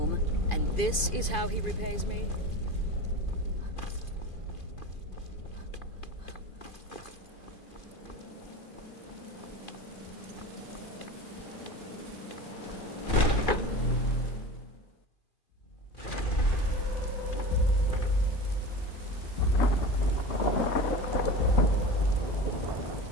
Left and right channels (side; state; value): right; late; 2.5 ms